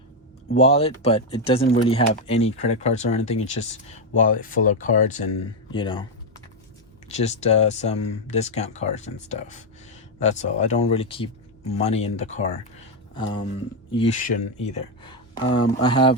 wallet, but it doesn't really have any credit cards or anything. It's just wallet full of cards and, you know, just some discount cards and stuff. That's all. I don't really keep money in the car. You shouldn't either. I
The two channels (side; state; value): both; normal; correlation 0.04